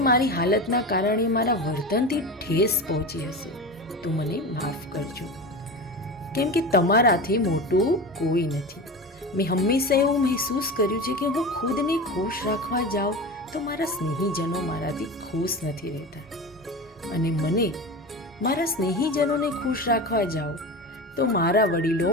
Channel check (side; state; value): both; normal; correlation 0.27